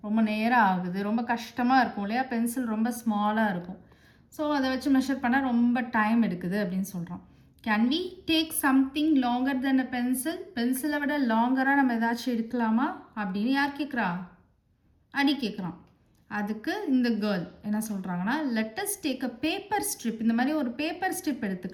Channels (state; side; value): identical; both; correlation 1.00